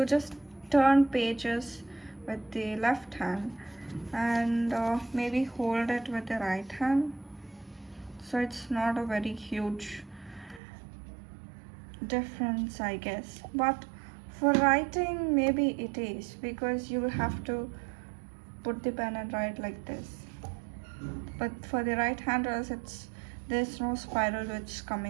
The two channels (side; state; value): left; drops out; at 10.6 s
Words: just turn pages with the left hand and maybe hold it with the right hand. So it's not a very huge difference, I guess. But for writing, maybe it is because you will have to put the pen and write like this. But for the right handers, there's no spiral which